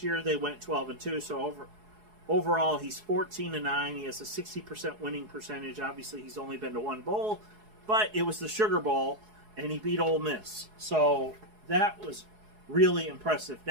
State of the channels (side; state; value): left; late; 4.7 ms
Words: year they went 12-2. So overall, he's 14-9. He has a 60% winning percentage. Obviously, he's only been to one bowl, but it was the Sugar Bowl, and he beat Ole Miss. So that was really impressive.